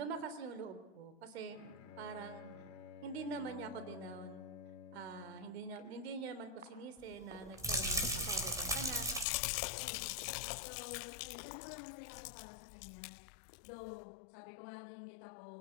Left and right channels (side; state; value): right; drops out; at 9.2 s